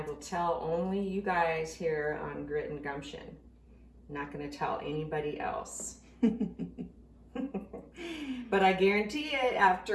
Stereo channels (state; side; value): identical; both; correlation 1.00